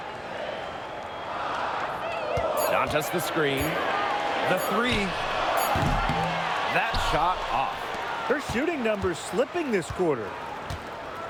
Dantas the screen. The three. That shot off. Her shooting numbers slipping this quarter.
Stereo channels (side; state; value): both; identical; correlation 1.00